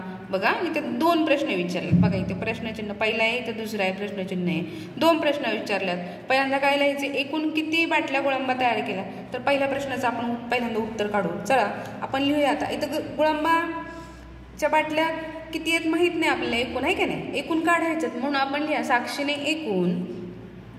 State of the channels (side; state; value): both; identical; correlation 1.00